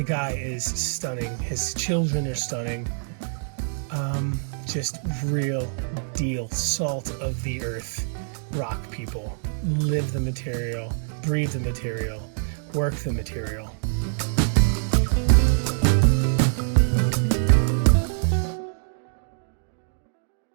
guy is stunning. His children are stunning. Just real deal, salt of the earth, rock people. Live the material, breathe the material, work the material.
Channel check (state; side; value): silent; left; digital silence